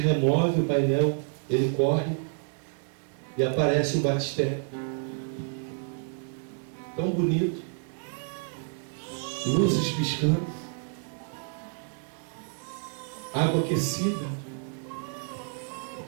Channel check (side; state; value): left; silent; 59 dB below the other